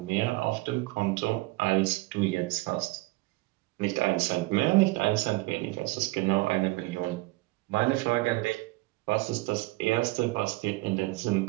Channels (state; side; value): quieter; left; 21.7 dB